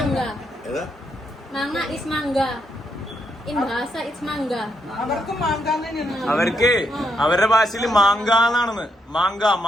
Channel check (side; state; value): both; normal; correlation 0.79